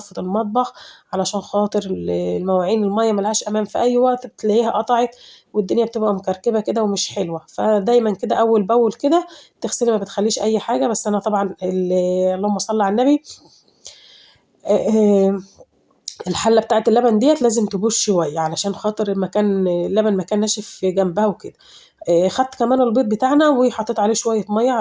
المطبخ علشان خاطر المواعين المَيّة ما لهاش أمان في أي وقت بتلاقيها قطعت والدنيا بتبقى مكركبة كده ومش حلوة، فدايمًا كده أول بأول كده تغسلي ما بتخلّيش أي حاجة، بس أنا طبعًا اللهم صل على النبي آآ الحلة بتاعة اللبن ديّة لازم تبوش شوية، علشان خاطر اللبن ما كان ناشف جنبها وكده. خدت كمان البيض بتاعنا وحطيت عليه شوية مَيّة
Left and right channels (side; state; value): both; identical; correlation 1.00